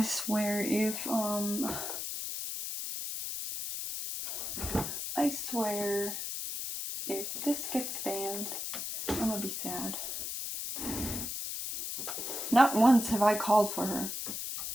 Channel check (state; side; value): noise; left; hiss, 4 dB below the sound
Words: swear if this gets banned, I'm gonna be sad. Not once have I called for her.